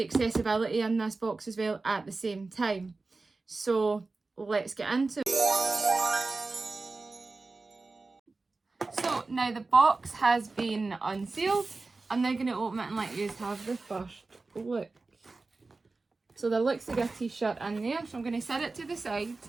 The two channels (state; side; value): quieter; left; 3.6 dB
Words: accessibility in this box as well at the same time. So let's get into it. So now the box has been unsealed. I'm now going to open it and let you have the first look. So there looks to be a t-shirt in there, so I'm going to set it to the side